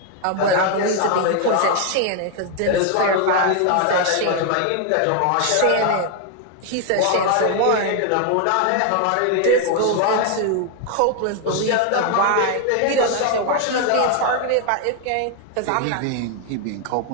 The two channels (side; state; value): both; different; correlation 0.00